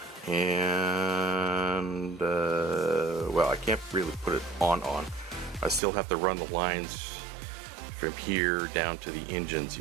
And well, I can't really put it on. I still have to run the lines from here down to the engines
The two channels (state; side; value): drops out; left; at 5.8 s